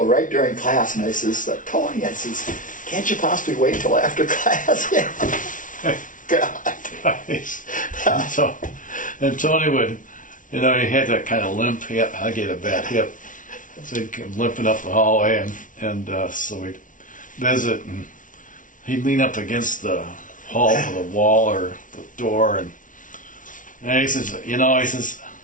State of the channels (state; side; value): late; right; 0.38 ms